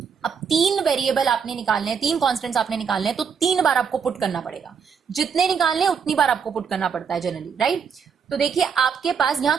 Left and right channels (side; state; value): left; quieter; 6.6 dB